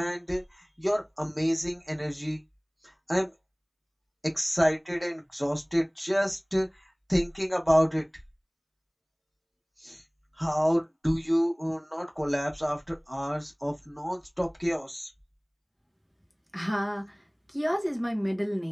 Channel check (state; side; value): identical; both; correlation 1.00